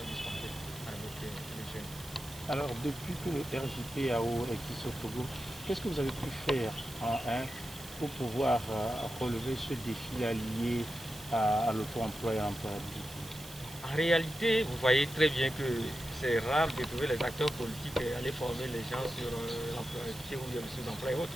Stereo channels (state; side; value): noise; right; hiss, 17 dB below the sound